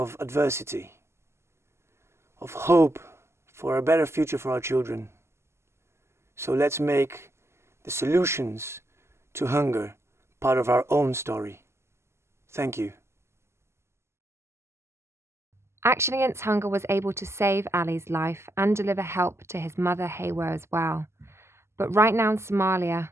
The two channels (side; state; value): left; late; 0.13 ms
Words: adversity, of hope for a better future for our children. So let's make the solutions to hunger part of our own story. Thank you. Action Against Hunger was able to save Ali's life and deliver help to his mother Hawo as well. But right now in Somalia,